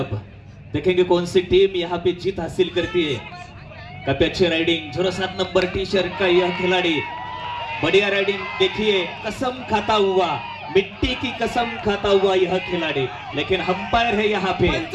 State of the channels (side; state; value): both; identical; correlation 1.00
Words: देखेंगे कौन सी टीम यहाँ पे जीत हासिल करती है. काफी अच्छी राइडिंग, 07 नंबर टी शर्ट का यह खिलाड़ी, बढ़िया राइडिंग. देखिए कसम खाता हुआ, मिट्टी की कसम खाता हुआ यह खिलाड़ी, लेकिन अंपायर है यहाँ पे,